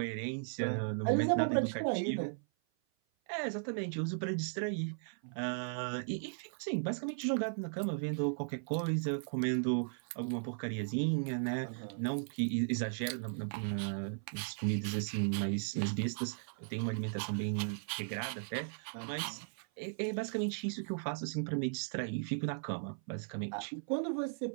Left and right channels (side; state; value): left; silent; 53 dB below the other